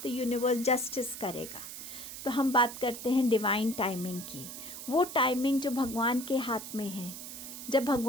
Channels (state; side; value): noise; right; hiss, 10 dB below the sound